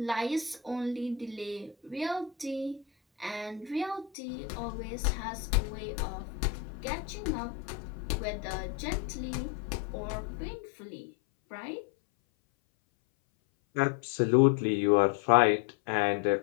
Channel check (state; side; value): drops out; right; at 4.1 s